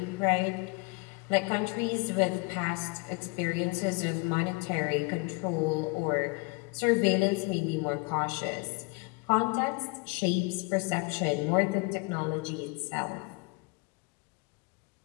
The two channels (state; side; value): quieter; right; 29.2 dB